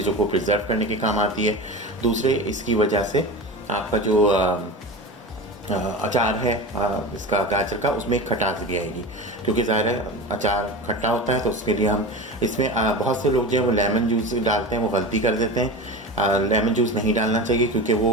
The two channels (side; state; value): both; normal; correlation 0.28